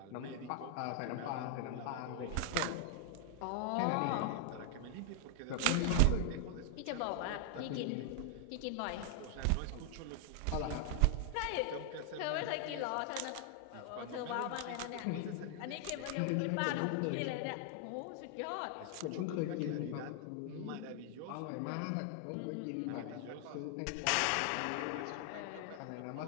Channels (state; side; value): different; both; correlation 0.00